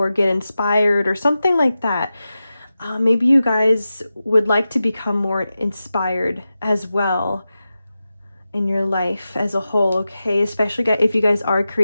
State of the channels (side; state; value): both; inverted; correlation -0.93